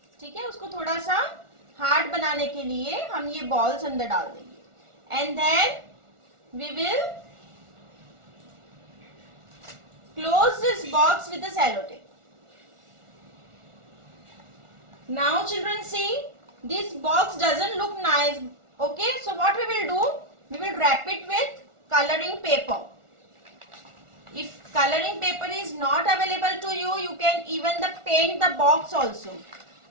ठीक है, उसको थोड़ा सा हार्ड बनाने के लिए हम ये बॉल्स अंदर डाल देंगे and then we will close this box with the sellotape. Now children, see, this box doesn't look nice. Okay, so what we will do, we will wrap it with coloring paper. If coloring paper is not available to you, you can even paint the box also.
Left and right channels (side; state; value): left; late; 1.4 ms